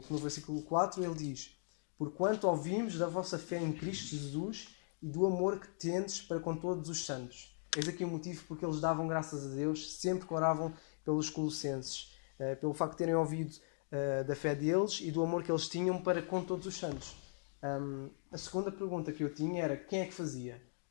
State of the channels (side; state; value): right; silent; digital silence